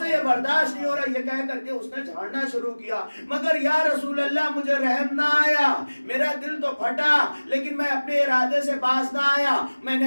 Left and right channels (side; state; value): both; inverted; correlation -1.00